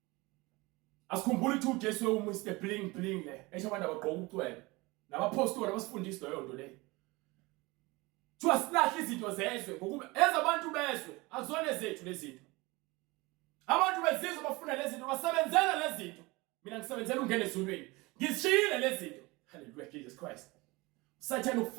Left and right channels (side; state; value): left; quieter; 23.4 dB